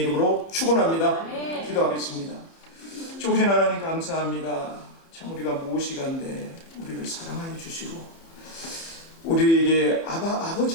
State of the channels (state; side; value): late; right; 30 ms